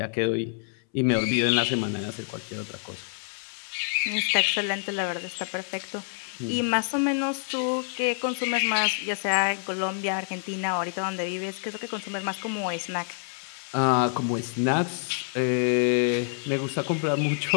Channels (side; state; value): right; silent; 60 dB below the other